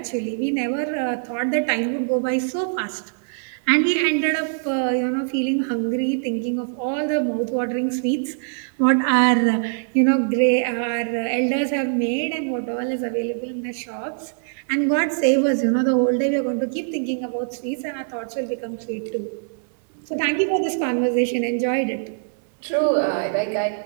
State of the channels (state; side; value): silent; left; digital silence